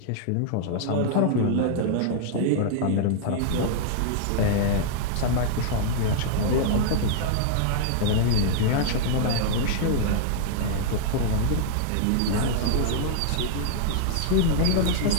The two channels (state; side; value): different; both; correlation -0.01